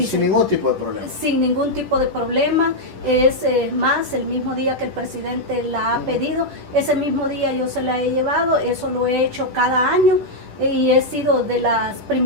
ningún tipo de problema. Sin ningún tipo de problema. Es más, el mismo día que el presidente la ha pedido, ese mismo día yo se la he llevado. Eso lo he hecho cada año y he sido de las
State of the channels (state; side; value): late; left; 10 ms